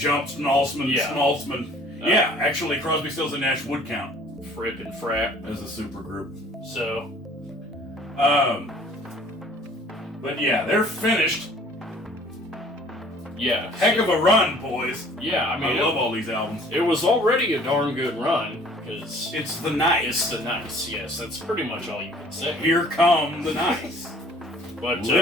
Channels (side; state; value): both; normal; correlation 0.53